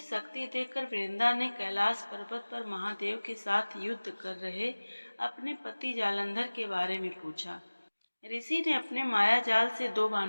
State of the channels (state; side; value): inverted; both; correlation -1.00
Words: देखकर वृंदा ने कैलाश पर्वत पर महादेव के साथ युद्ध कर रहे अपने पति जालंधर के बारे में पूछा। ऋषि ने अपने माया जाल से दो